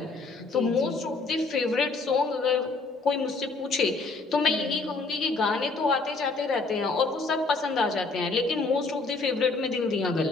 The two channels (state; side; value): quieter; right; 3.7 dB